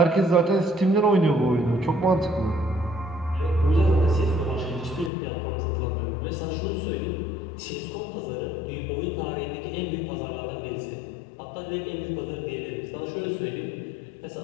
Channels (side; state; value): right; drops out; at 5.1 s